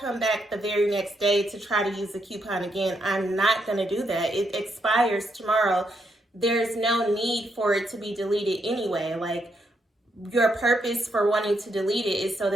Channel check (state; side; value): normal; both; correlation 0.78